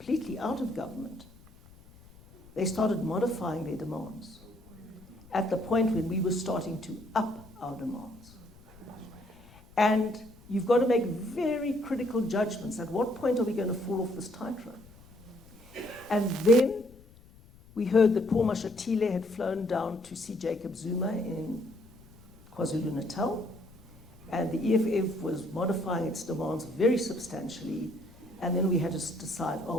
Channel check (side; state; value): left; noise; rumble, 24 dB below the sound